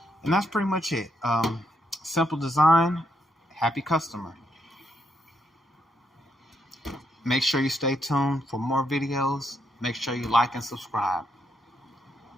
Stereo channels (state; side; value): normal; both; correlation 0.77